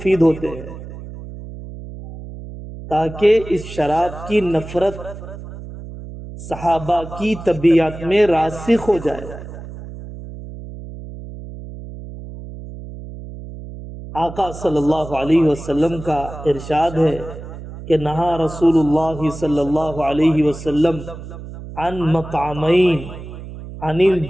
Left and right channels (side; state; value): right; noise; hum, 12 dB below the sound